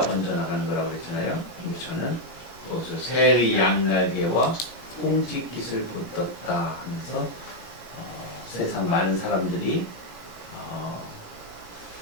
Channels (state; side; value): late; right; 17 ms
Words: 번져나가는 거라고 그랬잖아요. 근데 저는 거기서 새의 양날개와 꽁지깃을 붙었다 하면서 세상 많은 사람들이